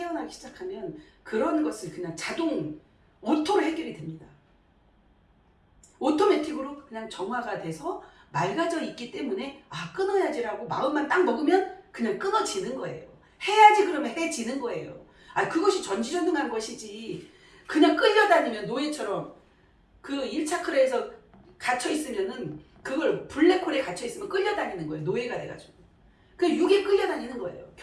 시작하면 그런 것을 그냥 자동 오토로 해결이 됩니다. 오토매틱으로 그냥 정화가 돼서 맑아져 있기 때문에 끊어야지라고 마음만 딱 먹으면 그냥 끊어지는 거예요. 해야지 그러면 해지는 거예요. 그것이 전지전능한 것이지 그냥 끌려다니면 노예처럼 그 1차크라에서 갇혀있으면은 그걸 블랙홀에 갇혀있으면 끌려다니는 거예요. 노예가 돼가지고. 그 육에 끌려다니는 거예요.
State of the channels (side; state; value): both; identical; correlation 1.00